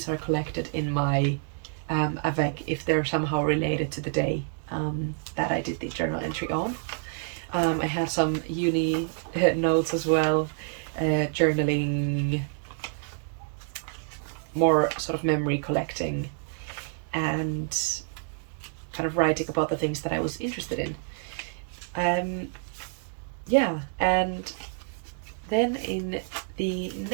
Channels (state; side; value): silent; left; 59 dB below the other